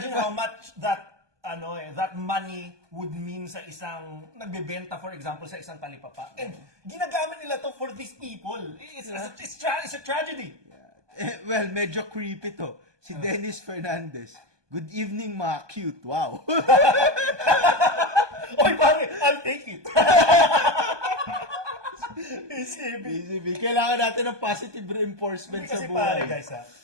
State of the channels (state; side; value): late; left; 1.2 ms